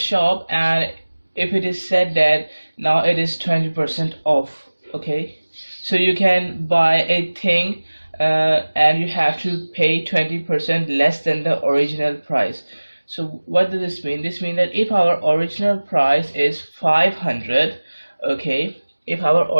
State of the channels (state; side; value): inverted; both; correlation -1.00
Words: and if it is said that now it is 20% off, okay, so you can buy a thing and you have to pay 20% less than the original price. So what does this mean? This means that if our original price is 500, okay, if our